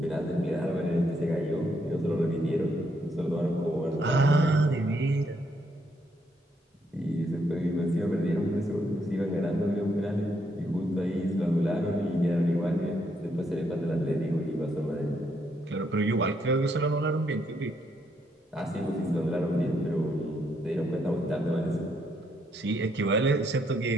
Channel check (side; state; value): both; normal; correlation 0.75